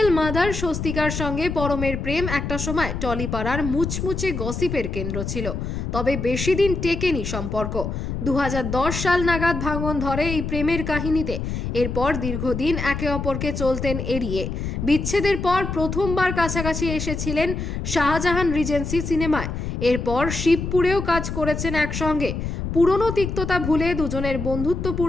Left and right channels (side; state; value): left; noise; rumble, 4 dB below the sound